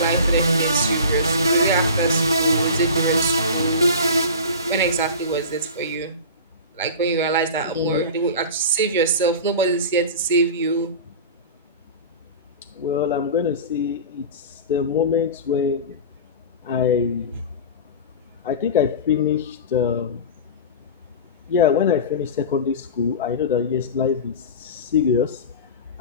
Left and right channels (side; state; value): both; inverted; correlation -0.31